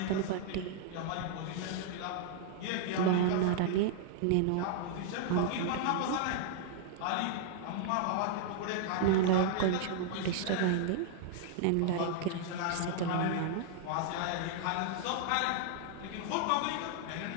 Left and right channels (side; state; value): both; different; correlation -0.01